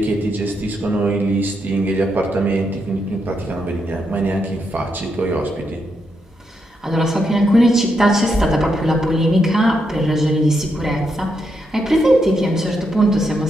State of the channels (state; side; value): normal; both; correlation 0.81